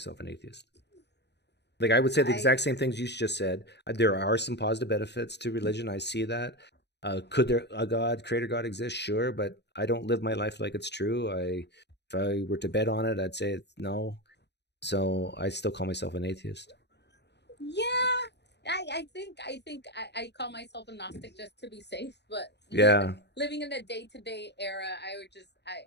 an atheist. Like I would say the exact same things you just said. There are some positive benefits to religion. I see that. Could there a God, creator God exist? Sure, but I don't live my life like it's true. If I were to bet on it, I'd say no. So I still call myself an atheist. Yeah. I think I call myself a Gnostic just to be safe, but yeah, living in a day-to-day era,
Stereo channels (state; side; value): late; right; 0.50 ms